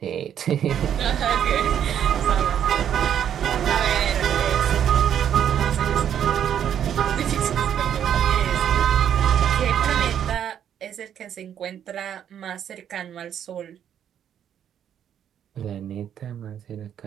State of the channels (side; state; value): left; quieter; 9.4 dB